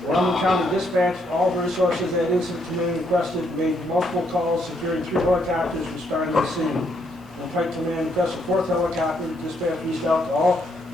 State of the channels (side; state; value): both; normal; correlation 0.73